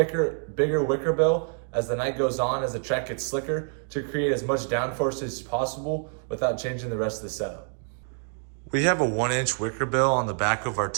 bigger wicker bill as the night goes on, as the track gets slicker, to create as much downforce as possible without changing the rest of the setup. We have a 1-inch wicker bill on the back of our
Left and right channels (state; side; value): silent; left; 60 dB below the other